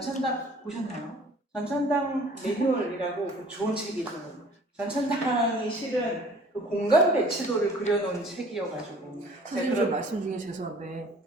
보셨나요? 전천당 매뉴얼이라고 좋은 책이 있어요. 전천당이 실은 그 공간 배치도를 그려놓은 책이어가지고. 선생님 저 말씀 중에 죄송한데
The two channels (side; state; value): both; normal; correlation 0.51